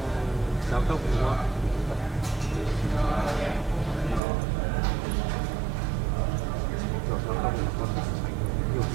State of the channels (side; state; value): left; drops out; at 4.2 s